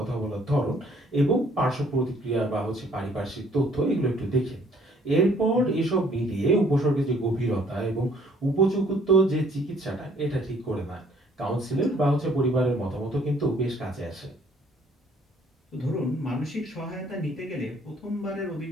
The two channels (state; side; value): normal; both; correlation 0.61